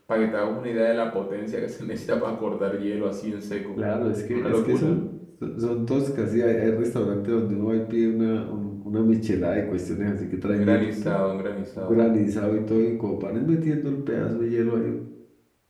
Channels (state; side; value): identical; both; correlation 1.00